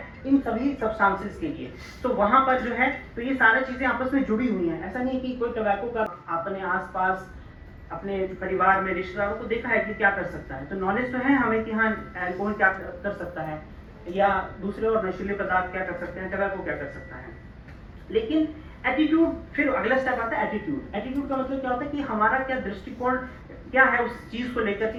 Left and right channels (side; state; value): both; identical; correlation 1.00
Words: इन सभी सब्सटेंसेस के लिए। तो वहां पर जो है तो ये सारी चीजें आपस में जुड़ी हुई हैं। ऐसा नहीं कि कोई टबैको का अपने आसपास अपने परिवार में रिश्तेदारों को देखा है कि क्या कर सकता है, तो नॉलेज तो है हमें कि हाँ अल्कोहल क्या कर सकता है या दूसरे और नशीले पदार्थ क्या कर सकते हैं, टबैको क्या कर सकता है। लेकिन एटीट्यूड, फिर अगला स्टेप आता है एटीट्यूड। एटीट्यूड का मतलब क्या होता है कि हमारा क्या दृष्टिकोण क्या है उस चीज को लेकर